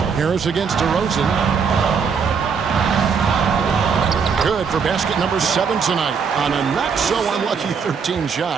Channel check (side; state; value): left; quieter; 6.1 dB